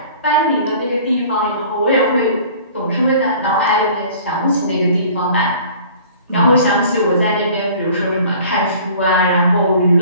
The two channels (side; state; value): both; inverted; correlation -0.48